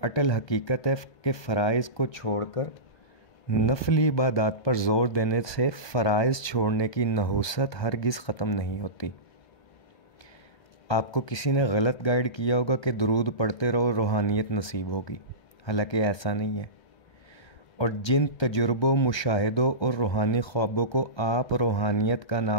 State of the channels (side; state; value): right; late; 1.2 ms